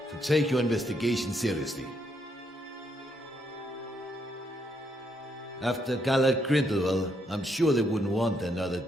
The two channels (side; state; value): both; normal; correlation 0.75